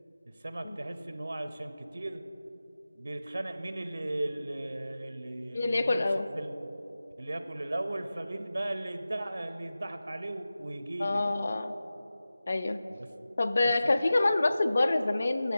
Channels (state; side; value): inverted; both; correlation -0.96